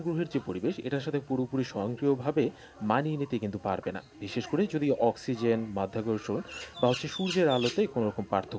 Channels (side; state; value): both; identical; correlation 1.00